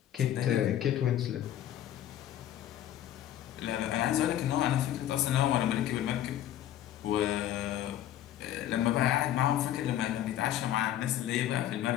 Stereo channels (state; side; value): quieter; right; 11.9 dB